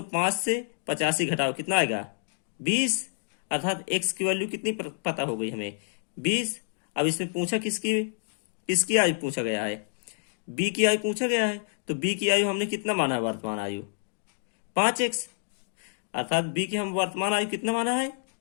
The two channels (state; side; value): silent; right; digital silence